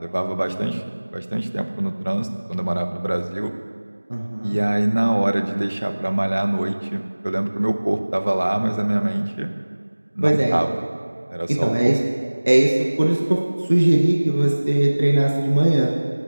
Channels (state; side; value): inverted; both; correlation -1.00